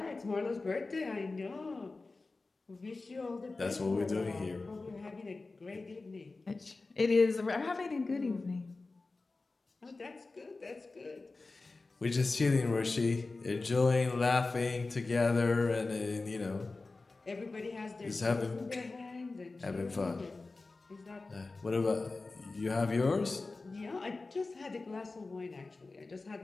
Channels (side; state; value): right; quieter; 3.6 dB